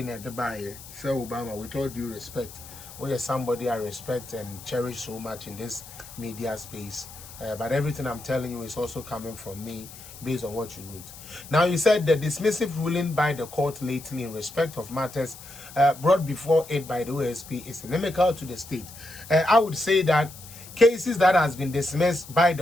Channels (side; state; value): left; noise; hiss, 16 dB below the sound